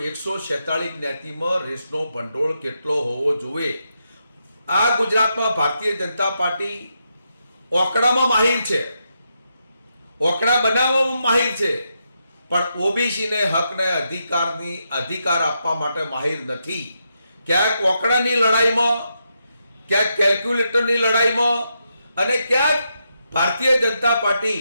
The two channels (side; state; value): both; inverted; correlation -0.83